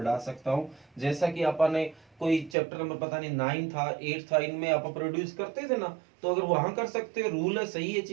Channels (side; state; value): left; drops out; at 2.6 s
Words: सकता हूँ। जैसा कि अपन ने कोई चैप्टर नंबर पता नहीं 9 था 8 था, इनमें आप प्रोड्यूस करते थे ना, तो अगर वहां कर सकते हैं, रूल है, सही है